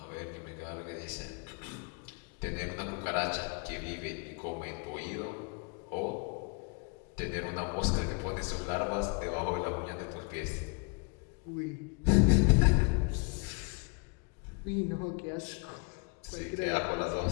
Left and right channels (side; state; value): right; quieter; 34.0 dB